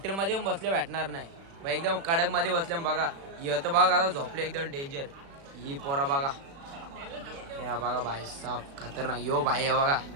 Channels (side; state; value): left; late; 36 ms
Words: येऊन बसले भेटणार नाही भाई. एकदम कडक मध्ये बसल्या बघा. तर बघा आता झोपले एकदम डेंजर. ही पोरा बघा, या बघा भाई साफ खतरनाक. यो भाई हे बघा